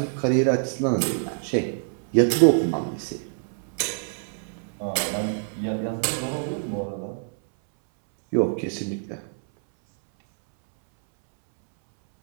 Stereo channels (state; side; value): silent; left; 61 dB below the other